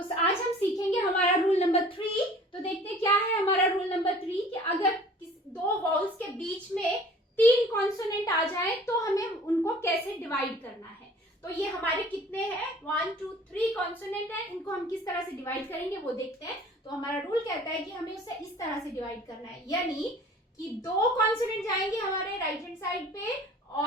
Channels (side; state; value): both; normal; correlation 0.48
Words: आज हम सीखेंगे हमारा रूल नंबर 3। तो देखते हैं क्या है हमारा रूल नंबर 3 कि अगर दो वाउल्स के बीच में 3 कॉन्सोनेंट आ जाए तो हमें उनको कैसे डिवाइड करना है। तो ये हमारे कितने हैं 1 2 3 कॉन्सोनेंट है, इनको हम किस तरह से डिवाइड करेंगे वो देखते हैं। तो हमारा रूल कहता है कि हमें उसे इस तरह से डिवाइड करना है, यानी कि 2 कॉन्सोनेंट जाएंगे हमारे राइट हैंड साइड पे